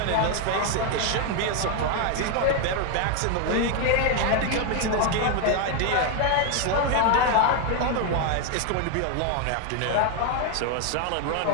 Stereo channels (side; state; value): both; different; correlation 0.01